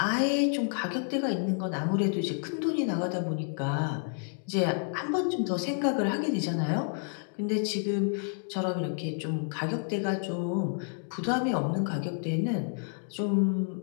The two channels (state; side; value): silent; right; 58 dB below the other